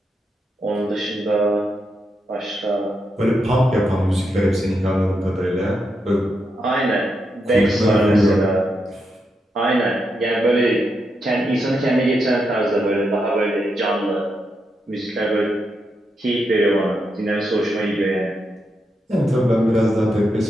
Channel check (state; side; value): normal; both; correlation 0.83